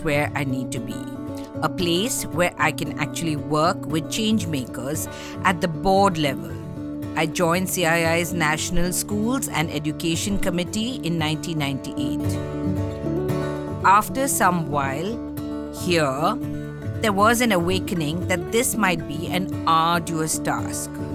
where I need to be. A place where I can actually work with change makers at the board level. I joined CII's National Schools and Education Committee in 1998. After some while here, there was an awakening that this might be an arduous task.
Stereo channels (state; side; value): identical; both; correlation 1.00